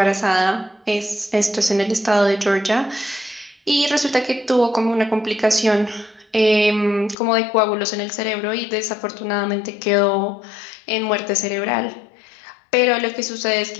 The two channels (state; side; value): drops out; right; at 7.2 s